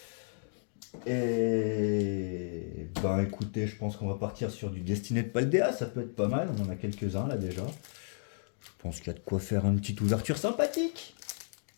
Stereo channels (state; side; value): silent; right; 56 dB below the other